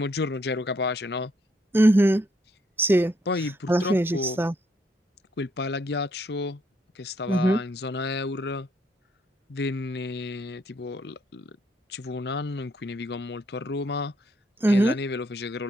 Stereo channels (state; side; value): normal; both; correlation 0.72